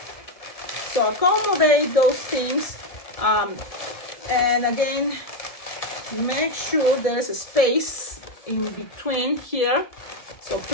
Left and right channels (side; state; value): right; late; 1.7 ms